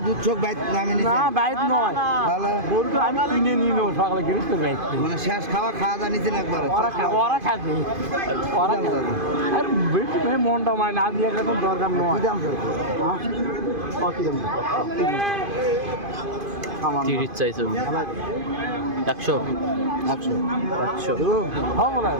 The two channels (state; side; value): late; left; 2.5 ms